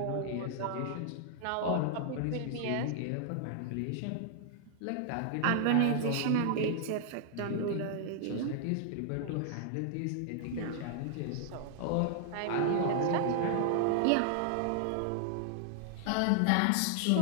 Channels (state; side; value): different; both; correlation 0.00